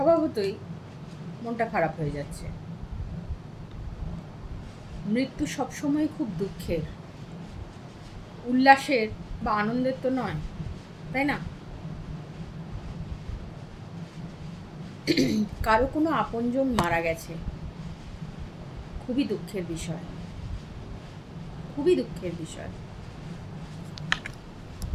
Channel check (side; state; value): both; identical; correlation 1.00